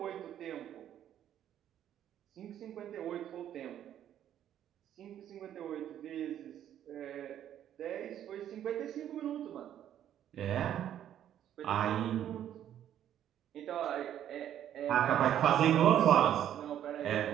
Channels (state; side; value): quieter; left; 10.7 dB